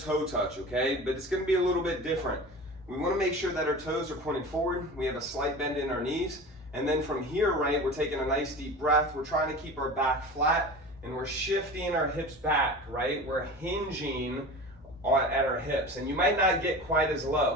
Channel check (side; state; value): both; normal; correlation 0.34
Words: touch, okay? But it's going to be a little bit different. We want to make sure that our toes are pointing forward. We have a slight bend in our knees. And then from here, right, we're taking a nice deep breath. We're trying to keep our back flat and we're shifting our hips back, right? We're hinging at our hips, and you might not get quite as